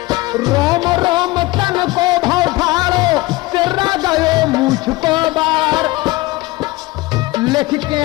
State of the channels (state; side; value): quieter; right; 20.1 dB